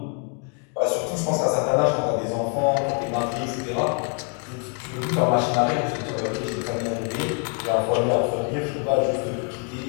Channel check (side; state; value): right; quieter; 37.2 dB